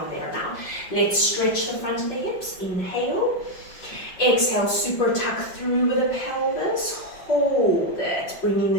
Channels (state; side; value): late; right; 5.5 ms